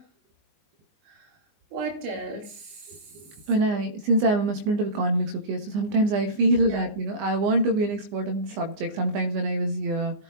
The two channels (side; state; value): left; late; 20 ms